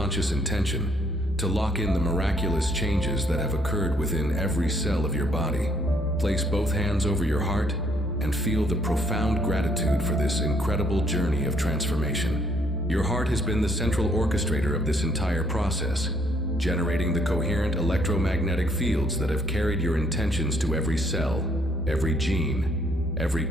intention to lock in the miraculous changes that have occurred within every cell of your body. Place both hands over your heart and feel the profound gratitude for this incredible journey of transformation. Your heart has been the central orchestrator of this entire process, generating the coherent electromagnetic fields that have carried your intentions to every cell, every gene, every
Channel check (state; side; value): normal; both; correlation 0.68